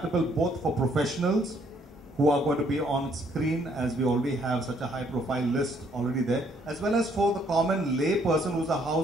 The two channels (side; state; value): both; normal; correlation 0.66